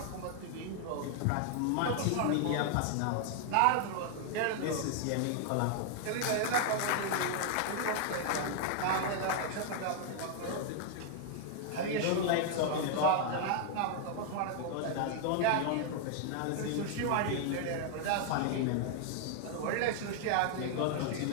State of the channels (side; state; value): both; different; correlation 0.00